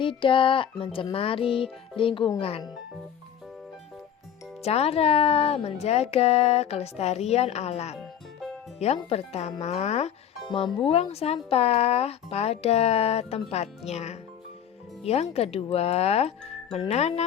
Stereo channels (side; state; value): right; quieter; 9.1 dB